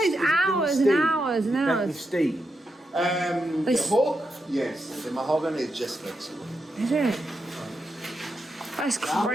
hours and hours and With hours. steam. The oak, yes. The mahogany is just flexible. Is it? That's How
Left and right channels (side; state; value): both; normal; correlation 0.85